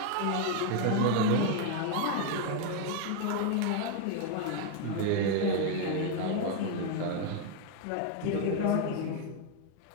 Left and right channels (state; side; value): different; both; correlation 0.01